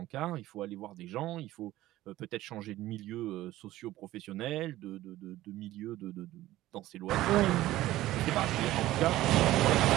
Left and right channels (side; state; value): left; quieter; 15.7 dB